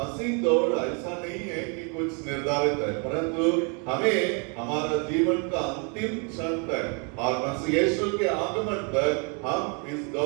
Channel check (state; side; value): quieter; left; 35.8 dB